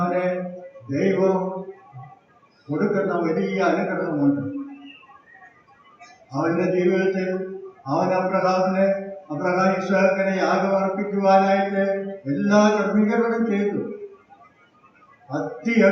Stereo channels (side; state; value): both; identical; correlation 1.00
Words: ദൈവം കൊടുക്കുന്ന വലിയ അനുഗ്രഹമുണ്ട്. അവന്റെ ജീവിതത്തിൽ അബ്രഹാം ഇസ്ഹാക്കിനെ യാഗമർപ്പിക്കുവാനായിട്ട് എല്ലാ ക്രമീകരണവും ചെയ്തു.